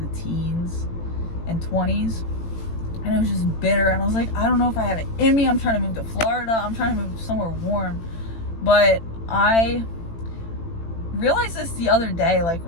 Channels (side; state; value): right; late; 18 ms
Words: teens and 20s. And it was just bitter. And I was like, I don't know if I have it in me. I'm trying to move to Florida. I'm trying to move somewhere warm. But I realized this the other day, like